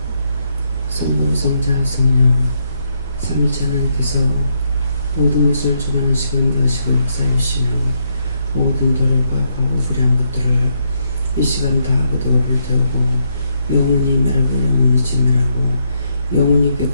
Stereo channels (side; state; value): both; inverted; correlation -0.77